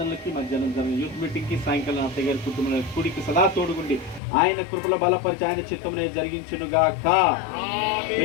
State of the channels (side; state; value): right; drops out; at 4.2 s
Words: మధ్యాహ్నం జరిగిన యూత్ మీటింగ్కి సాయంకాలం అత్తయ్య గారి కుటుంబంలో కూడికి సదా తోడుగుండి ఆయన కృపలో బలపరిచి ఆయన చిత్తంలో జరిగించునుగాక.